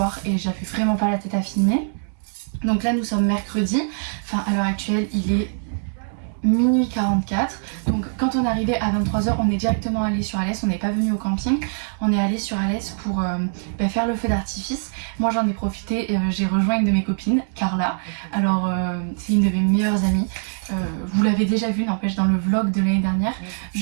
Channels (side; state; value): left; silent; digital silence